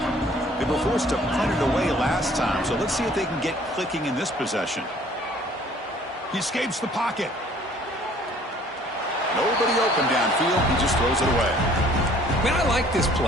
They were forced to punt it away last time, so let's see if they can get clicking in this possession. He escapes the pocket. Nobody open downfield. He just throws it away. Man, I like this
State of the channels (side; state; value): both; normal; correlation 0.55